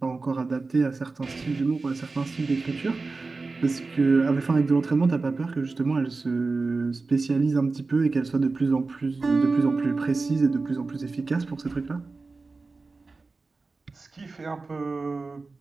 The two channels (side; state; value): left; quieter; 3.8 dB